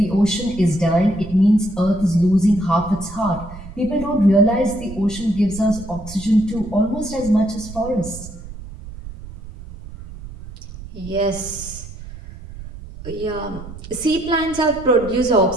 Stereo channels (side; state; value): right; noise; rumble, 14 dB below the sound